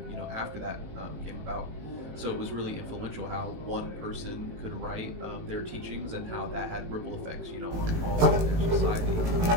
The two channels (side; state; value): left; late; 18 ms